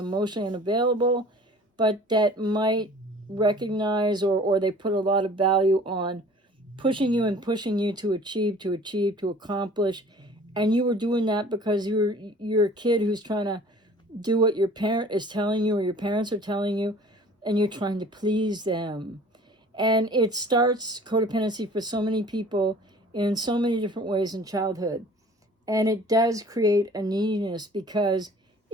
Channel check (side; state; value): both; normal; correlation 0.48